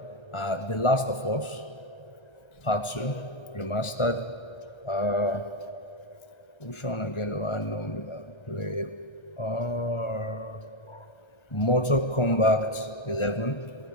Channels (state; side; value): late; right; 1.4 ms